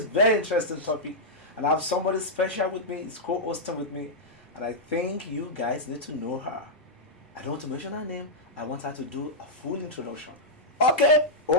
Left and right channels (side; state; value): both; normal; correlation -0.07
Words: very interesting topic, and I have somebody special with me. It's co-hosting with me, and I think you guys need to know her. I don't want to mention her name. I want her to do a full introduction. Okay,